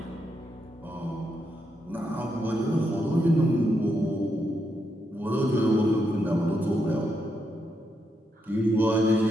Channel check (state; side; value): normal; both; correlation 0.81